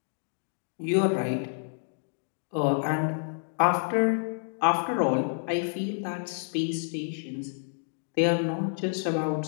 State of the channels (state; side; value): silent; right; digital silence